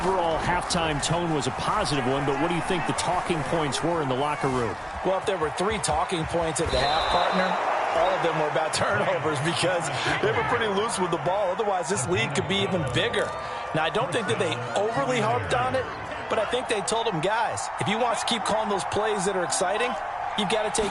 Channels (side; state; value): both; identical; correlation 1.00